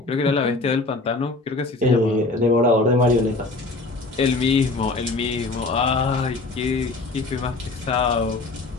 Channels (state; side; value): quieter; right; 3.3 dB